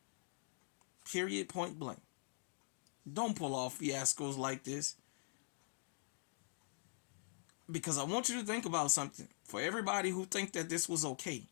Period, point blank. Don't pull off fiascos like this. Because I want you to think about something. For everybody who think that this was okay,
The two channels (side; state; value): right; silent; digital silence